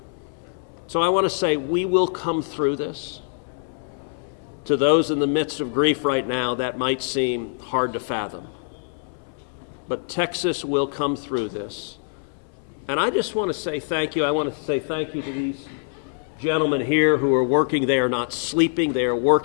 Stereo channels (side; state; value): right; silent; 62 dB below the other